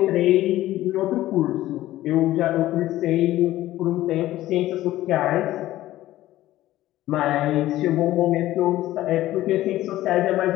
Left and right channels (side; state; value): right; quieter; 15.1 dB